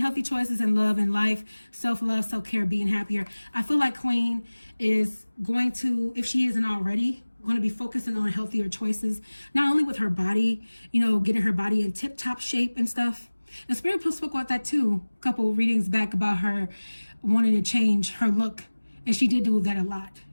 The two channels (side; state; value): both; inverted; correlation -1.00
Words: choices in love and life, self-love, self-care, being happier. I feel like Queen is going to, if she isn't already, going to be focusing on healthier choices, not only with her body, getting her body in tip-top shape and stuff. And Spirit spoke about that too, a couple readings back, about her wanting to change her look. And she did do that a lot.